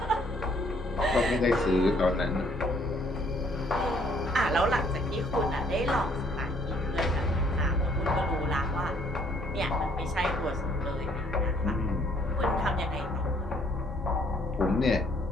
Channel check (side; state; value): both; normal; correlation 0.64